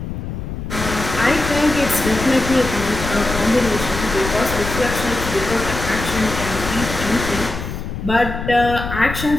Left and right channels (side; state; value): left; noise; rumble, 6 dB below the sound